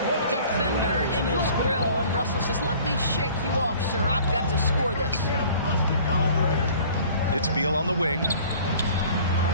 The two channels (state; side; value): inverted; both; correlation -0.49